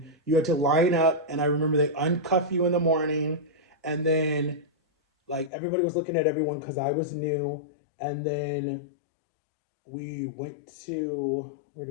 you had to line up, and I remember they uncuff you in the morning, and then like everybody was looking at everyone because I was new. And then we went to, where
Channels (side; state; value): right; drops out; at 5.5 s